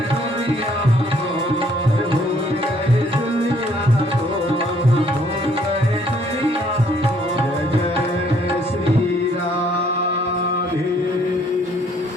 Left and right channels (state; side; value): normal; both; correlation 0.64